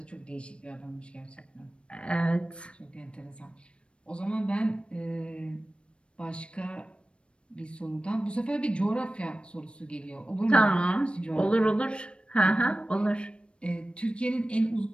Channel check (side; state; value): right; late; 0.058 ms